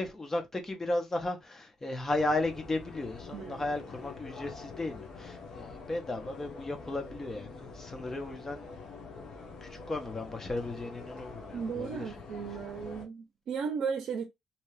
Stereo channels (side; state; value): both; normal; correlation 0.81